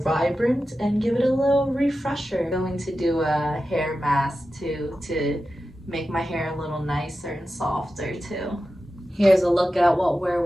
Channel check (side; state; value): both; normal; correlation 0.92